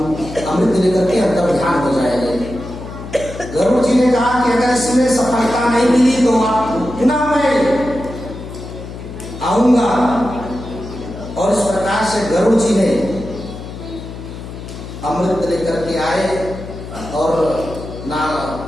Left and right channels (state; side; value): noise; left; hum, 11 dB below the sound